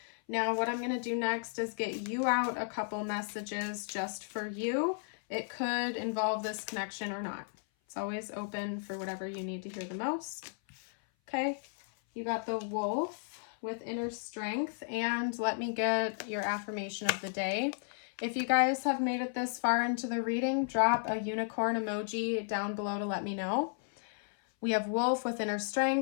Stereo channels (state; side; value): silent; right; 55 dB below the other